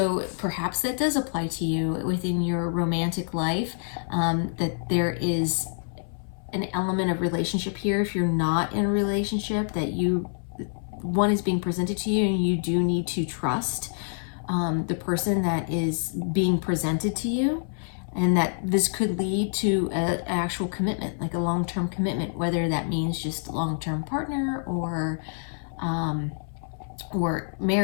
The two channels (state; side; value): silent; right; 59 dB below the other